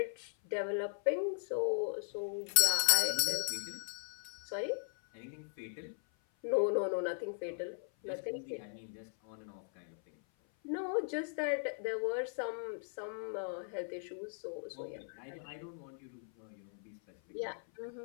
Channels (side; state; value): right; silent; 52 dB below the other